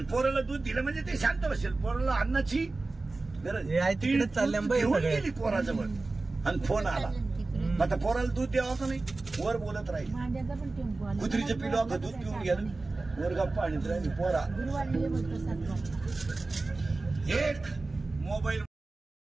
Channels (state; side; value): quieter; left; 3.4 dB